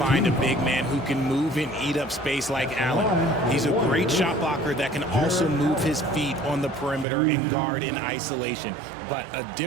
a big man who can move and eat up space like Allen. He's a great shot blocker that can also move his feet on the perimeter and guard in isolation. But a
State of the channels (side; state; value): left; drops out; at 7.1 s